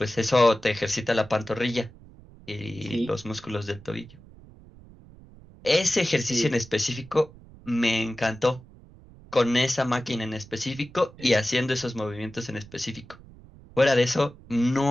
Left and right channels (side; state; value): right; noise; rumble, 22 dB below the sound